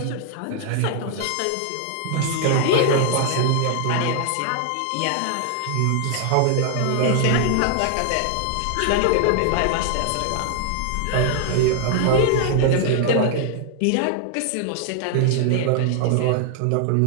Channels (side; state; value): both; different; correlation 0.00